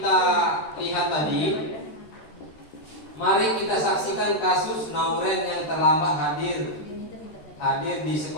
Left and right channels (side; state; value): right; late; 13 ms